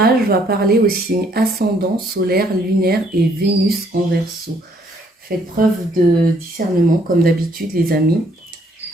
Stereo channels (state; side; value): normal; both; correlation 0.66